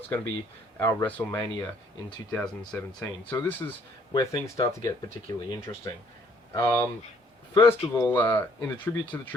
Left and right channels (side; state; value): both; normal; correlation 0.63